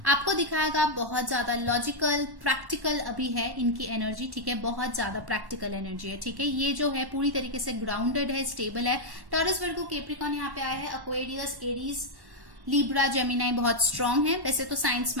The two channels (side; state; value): left; late; 1.1 ms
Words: आपको दिखाएगा बहुत ज्यादा लॉजिकल, प्रैक्टिकल अभी है इनकी एनर्जी, ठीक है, बहुत ज्यादा प्रैक्टिकल एनर्जी है, ठीक है। ये जो है पूरी तरीके से ग्राउंडेड है, स्टेबल है। टॉरस, वर्गो, कैप्रिकॉर्न यहाँ पे आया है, एक्वेरियस, एरीज, लिब्रा, जेमिनाई बहुत स्ट्रांग है। वैसे तो साइंस